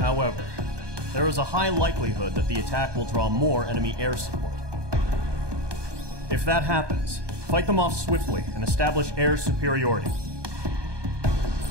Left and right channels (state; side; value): late; left; 1.2 ms